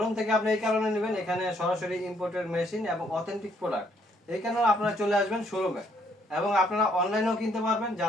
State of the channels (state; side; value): normal; both; correlation 0.69